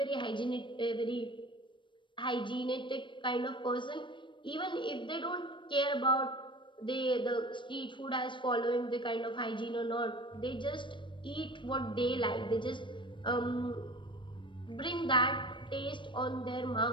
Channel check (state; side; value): late; right; 0.23 ms